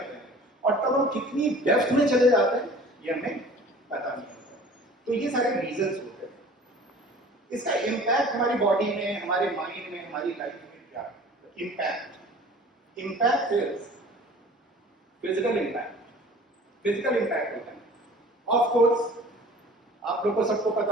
हैं, और तब हम कितनी डेप्थ में चले जाते हैं ये हमें पता नहीं होता. तो ये सारे रीजंस होते हैं. इसका इम्पैक्ट हमारी बॉडी में, हमारे माइंड में, हमारी लाइफ में क्या है? Impact is physical impact. Physical impact होता है. ऑफ कोर्स आप लोगों को सबको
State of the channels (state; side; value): normal; both; correlation 0.46